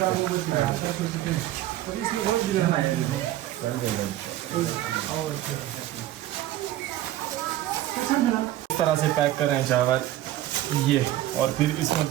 इस तरह से पैक कर रहे हैं चावल ये, और फिर इसमें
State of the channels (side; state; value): left; quieter; 14.0 dB